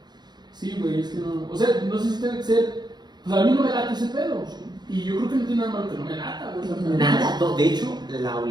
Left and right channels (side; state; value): left; late; 0.21 ms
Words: Sí, güey, es que no. O sea, no sé si tiene que ser. Pues a mí no me late ese pedo. Y yo creo que no tiene nada malo que no me lata, güey. O sea, Nada, no, de hecho, la